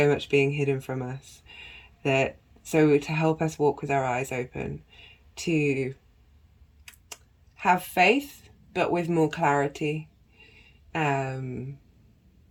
much being hidden from us, so to help us walk with our eyes open, to have faith but with more clarity.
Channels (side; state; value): both; identical; correlation 1.00